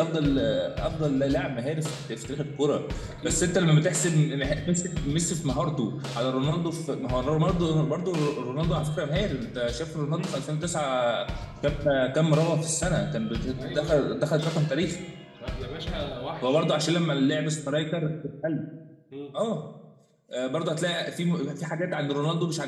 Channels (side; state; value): both; identical; correlation 1.00